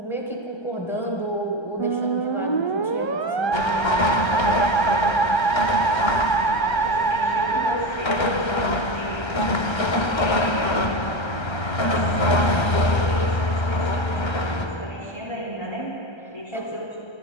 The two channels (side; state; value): right; late; 1.3 ms